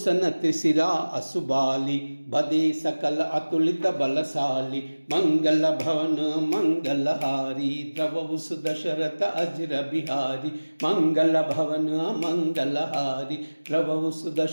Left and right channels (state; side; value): inverted; both; correlation -1.00